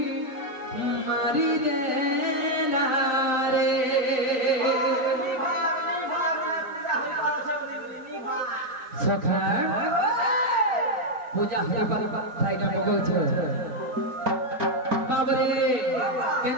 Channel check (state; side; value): late; left; 4.4 ms